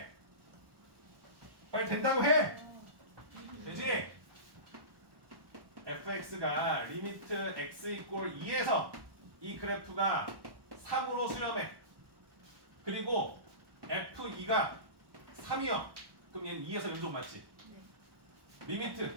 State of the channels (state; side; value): late; left; 1.1 ms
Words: 빨리 된다고 해! 되지? fx가 리미트 x 이꼴 2에서 이 그래프가 3으로 수렴해. 그리고 f2가 3이요. 그럼 얘는 2에서 연속 맞지?